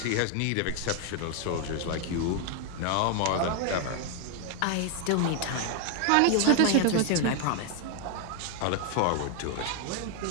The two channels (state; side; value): different; both; correlation 0.00